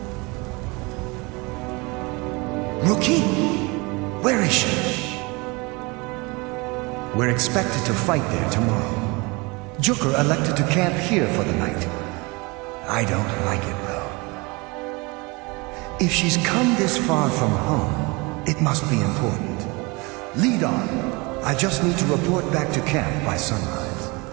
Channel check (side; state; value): left; quieter; 26.6 dB